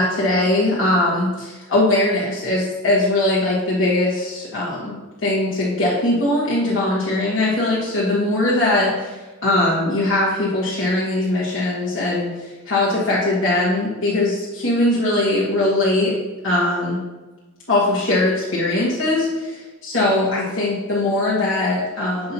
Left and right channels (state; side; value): normal; both; correlation 0.28